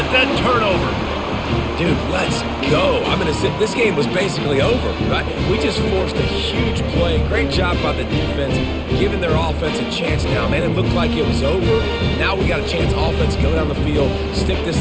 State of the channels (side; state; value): both; identical; correlation 1.00